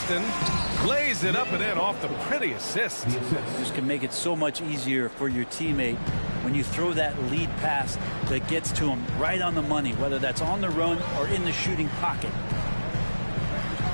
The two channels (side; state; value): both; inverted; correlation -1.00